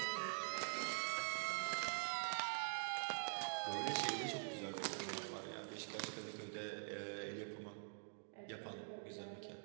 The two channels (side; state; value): left; silent; digital silence